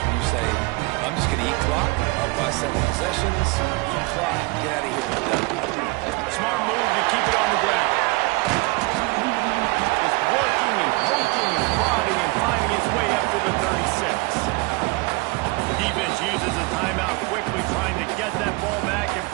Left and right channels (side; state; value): left; quieter; 25.7 dB